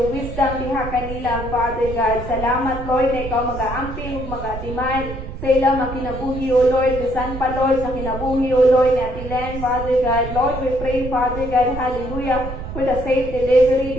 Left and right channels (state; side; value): noise; right; rumble, 9 dB below the sound